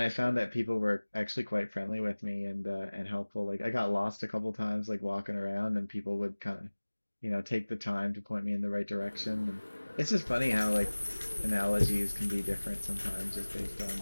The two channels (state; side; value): inverted; both; correlation -1.00